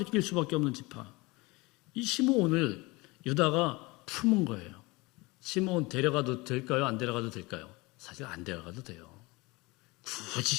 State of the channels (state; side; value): quieter; right; 24.0 dB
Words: 낄 수밖에 없는 지파. 이 시므온을 유다가 품은 거예요. 시므온 데려가도 될까요? 안 데려가도 될까요? 사실 안 데려가도 돼요.